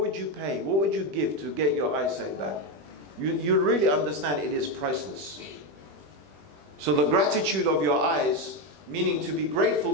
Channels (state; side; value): late; left; 20 ms